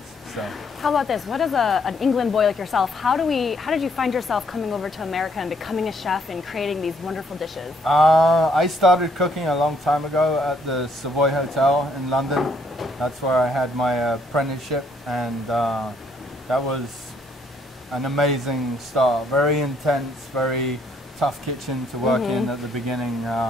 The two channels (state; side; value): normal; both; correlation 0.68